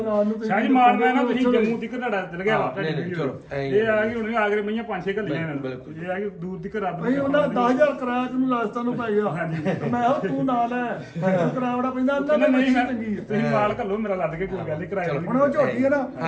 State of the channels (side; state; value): both; identical; correlation 1.00